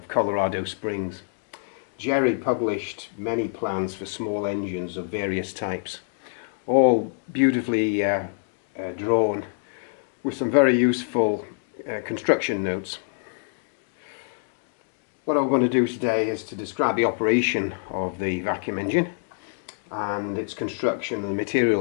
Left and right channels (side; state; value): right; silent; digital silence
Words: Colorado Springs. Jerry published many plans for small engines of various types, all beautifully drawn with some very useful construction notes. What I'm going to do today is to describe the operation of the vacuum engine and its construction and the